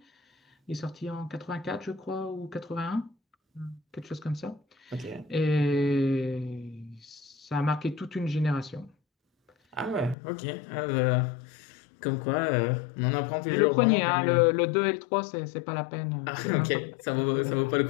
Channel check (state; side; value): drops out; right; at 10.2 s